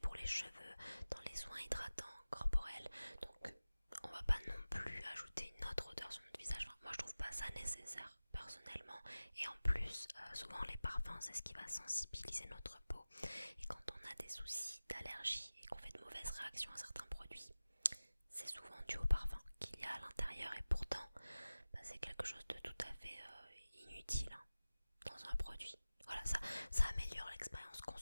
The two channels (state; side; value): inverted; both; correlation -0.97